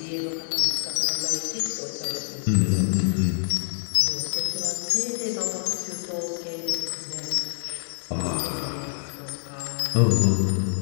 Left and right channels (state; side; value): silent; right; 61 dB below the other